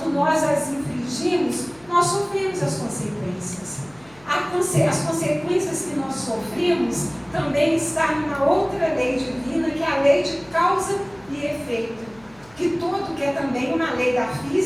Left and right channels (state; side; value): noise; left; hum, 27 dB below the sound